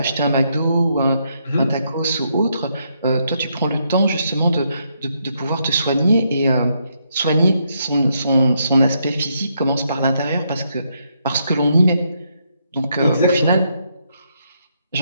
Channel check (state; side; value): inverted; both; correlation -0.77